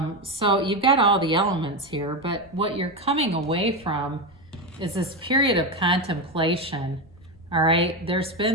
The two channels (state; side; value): noise; left; rumble, 27 dB below the sound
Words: So you've got all the elements here, but what you're coming away from is this period of contemplation, all right? There's